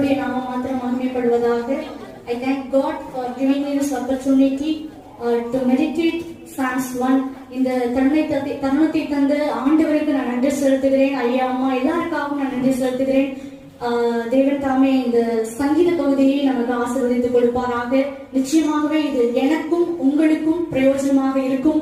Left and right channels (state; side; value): identical; both; correlation 1.00